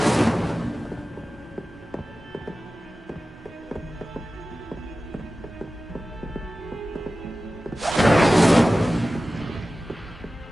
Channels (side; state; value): both; normal; correlation 0.96